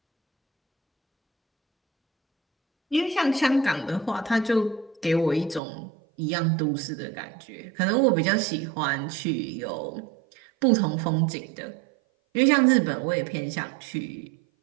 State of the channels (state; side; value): drops out; left; at 5.6 s